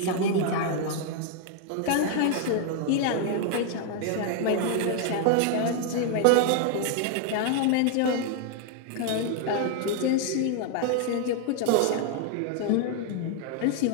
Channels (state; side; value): different; both; correlation 0.00